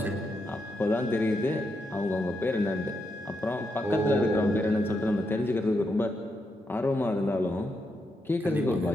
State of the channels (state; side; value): normal; both; correlation 0.82